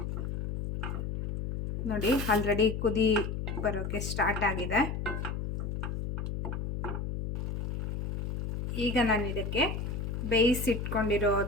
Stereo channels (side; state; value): left; noise; hum, 4 dB below the sound